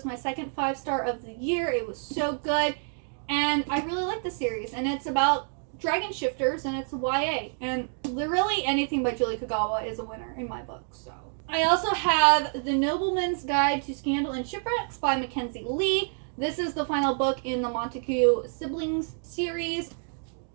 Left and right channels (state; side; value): silent; left; 59 dB below the other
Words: my second 5-star of the year. It was so good, and I really like the series, and it's about dragon shifters, and it's YA, and literally anything by Julie Kagawa is a winner in my book. So I also have The Nobleman's Guide to Scandal and Shipwrecks by Mackenzie Lee. This is the final book in the Montague siblings series.